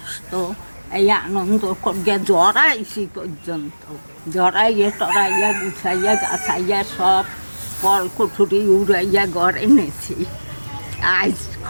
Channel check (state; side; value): inverted; both; correlation -1.00